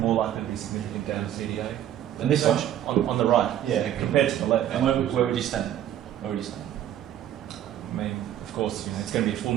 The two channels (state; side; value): quieter; left; 11.3 dB